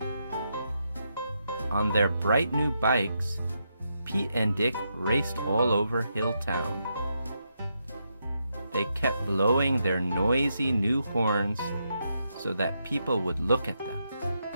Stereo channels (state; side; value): inverted; both; correlation -0.82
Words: On their bright new bikes, Pete and Dick raced all over Hilltown. They kept blowing their noisy new horns so that people would look at them.